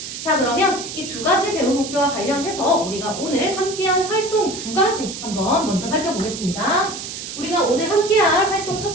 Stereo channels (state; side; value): noise; right; hiss, 8 dB below the sound